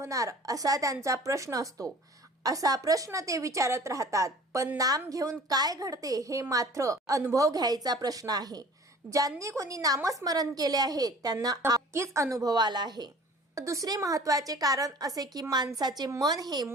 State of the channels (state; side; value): normal; both; correlation 0.47